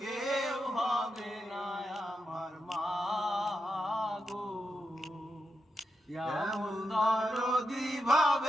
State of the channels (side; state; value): both; normal; correlation 0.87